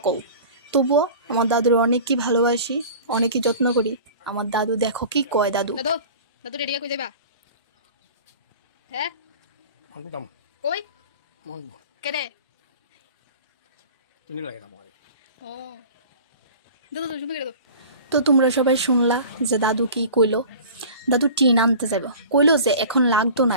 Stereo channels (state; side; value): inverted; both; correlation -0.40